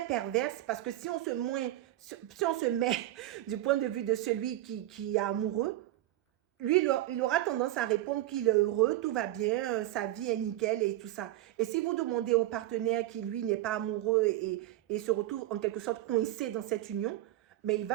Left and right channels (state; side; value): quieter; left; 15.0 dB